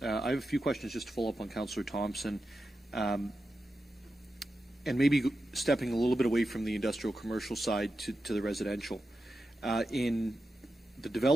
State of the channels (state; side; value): normal; both; correlation 0.90